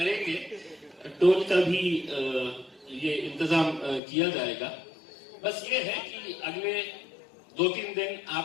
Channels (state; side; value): drops out; right; at 4.0 s